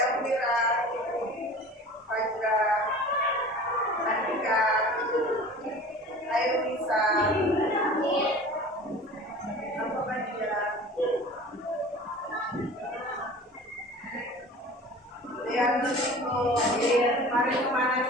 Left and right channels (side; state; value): both; normal; correlation 0.40